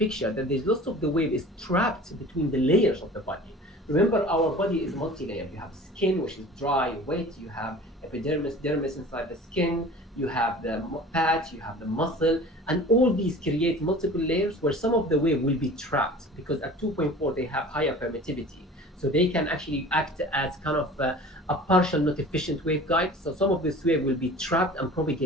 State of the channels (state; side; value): normal; both; correlation 0.42